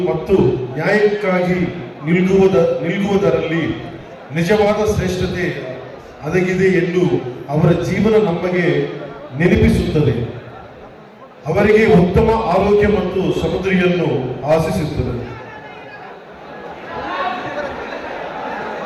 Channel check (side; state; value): both; identical; correlation 1.00